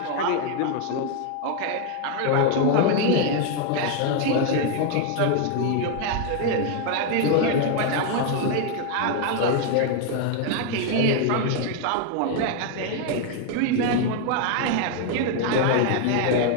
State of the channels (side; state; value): both; different; correlation 0.01